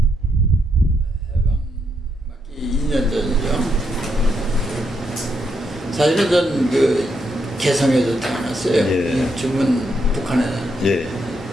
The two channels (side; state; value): both; normal; correlation 0.79